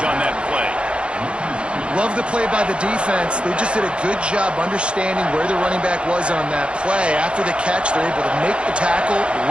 on that play. Love the play by the defense. They just did a good job understanding where the running back was on that play. After the catch, they're able to make the tackle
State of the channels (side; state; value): left; late; 0.058 ms